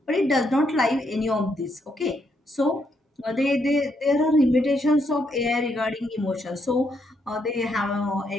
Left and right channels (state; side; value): normal; both; correlation 0.76